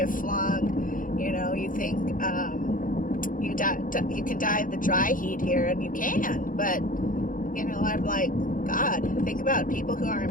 flung. You think you can die of the dry heat here, and you can, but I'm like, God, think about people who are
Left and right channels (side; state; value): right; late; 0.39 ms